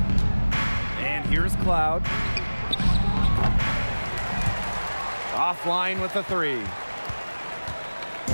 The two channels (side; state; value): both; inverted; correlation -1.00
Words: And here's Cloud. Offline with the 3.